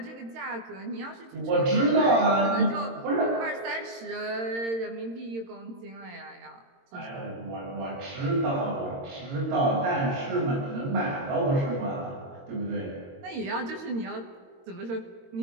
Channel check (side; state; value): left; late; 22 ms